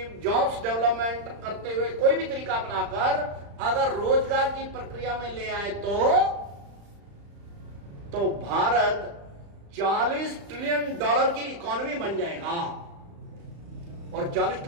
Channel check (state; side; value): late; left; 35 ms